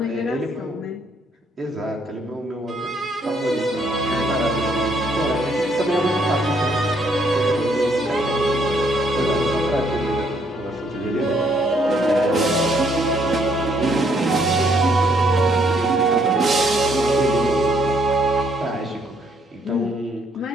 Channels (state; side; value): normal; both; correlation 0.69